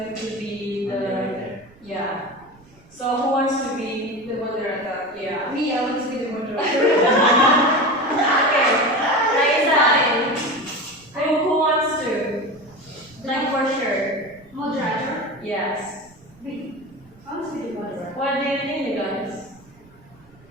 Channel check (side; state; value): right; noise; rumble, 27 dB below the sound